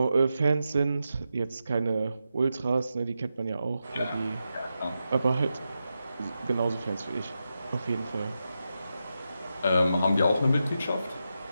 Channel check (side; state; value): both; inverted; correlation -0.88